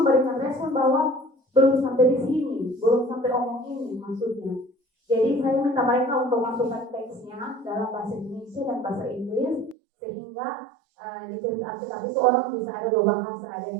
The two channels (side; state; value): left; drops out; at 9.8 s